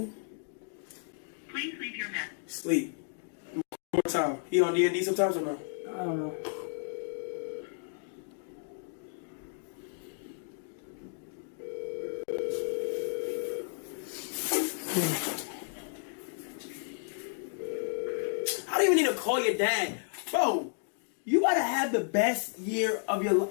Please leave your message. Sleep. One more time. He on D&D sometimes or no? I don't know. How do you even need to call your dad. Bro, you gotta have the best year of your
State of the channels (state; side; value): silent; right; digital silence